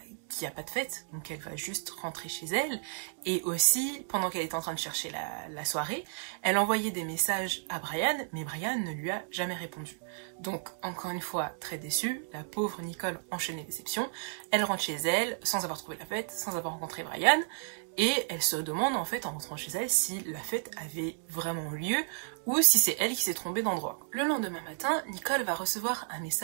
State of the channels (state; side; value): silent; left; digital silence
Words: qu'il n'y a pas de fête, donc elle va juste rentrer chez elle. Et aussi, pendant qu'elle était en train de chercher la soirée, elle envoyait des messages à Brian, mais Brian ne lui a jamais répondu. Donc, encore une fois, très déçue, la pauvre Nicole enchaîne les déceptions. Elle rentre chez elle, sans avoir trouvé la fête, sans avoir rencontré Brian, et elle se demande, en fait, en rentrant chez elle, si la fête avait vraiment lieu, ou si c'est elle qui s'est trompée d'endroit. Le lendemain matin, Nicole va recevoir un